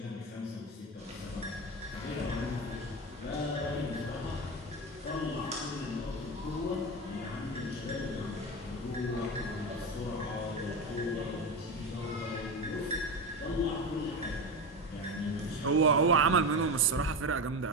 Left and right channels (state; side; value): normal; both; correlation 0.20